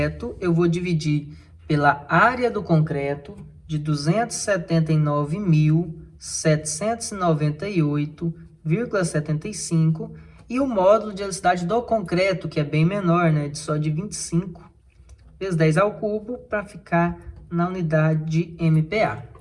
eu vou dividir pela área do concreto de 279.798,75 e o módulo de elasticidade do concreto, que é bem menor, né, só de 25 vezes 10 ao cubo, para ficar na unidade de MPa.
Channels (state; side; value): identical; both; correlation 1.00